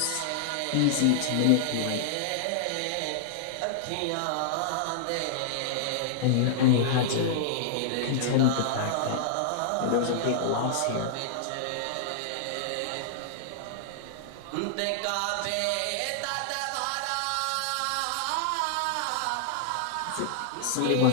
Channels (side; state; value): both; different; correlation -0.01